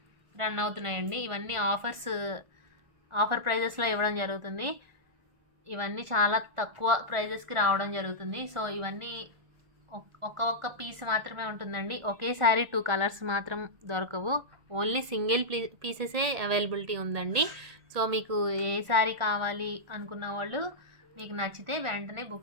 రన్ అవుతున్నాయండి. ఇవన్నీ ఆఫర్ ప్రైజెస్లో ఇవ్వడం జరుగుతుంది. ఇవన్నీ చాలా తక్కువ ప్రైజెస్కి రావడం జరుగుతుంది. సో ఇవన్నీ ఒక్క పీస్ మాత్రమే ఉంటుందండి. ఒకేసారి 2 కలర్స్ మాత్రం దొరకవు. ఓన్లీ సింగిల్ పీసెసే అవైలబిలిటీ ఉందండి. సో మీకు ఏ శారీ కావాలి అనుకున్న వాళ్ళు మీకు నచ్చితే వెంటనే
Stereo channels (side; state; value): left; late; 1.4 ms